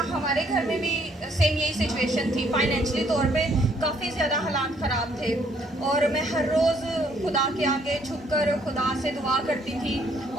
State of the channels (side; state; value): both; normal; correlation 0.66